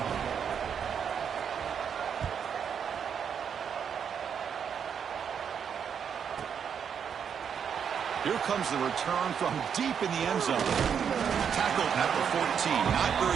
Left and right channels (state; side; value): quieter; left; 7.5 dB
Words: Here comes the return from deep in the end zone. Tackled at the 14. Not